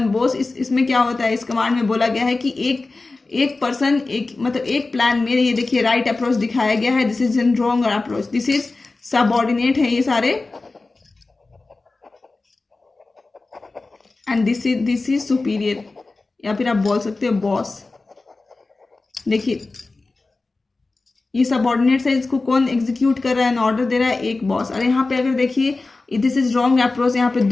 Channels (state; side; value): quieter; right; 3.5 dB